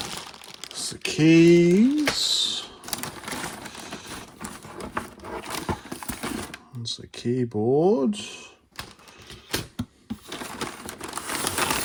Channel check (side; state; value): both; identical; correlation 1.00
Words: It's the keys. It's the keyboard.